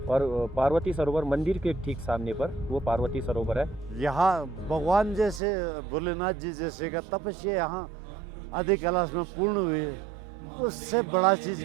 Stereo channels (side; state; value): left; drops out; at 5.4 s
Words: और पार्वती सरोवर मंदिर के ठीक सामने पर वो पार्वती सरोवर है। यहाँ भगवान जैसे भोलेनाथ जी जैसे का तपस्या यहाँ आदि कैलाश में पूर्ण हुई है, उससे बड़ा चीज